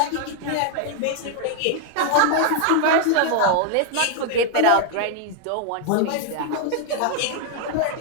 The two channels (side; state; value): both; different; correlation 0.00